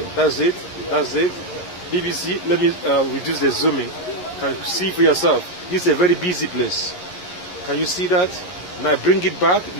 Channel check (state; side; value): late; right; 11 ms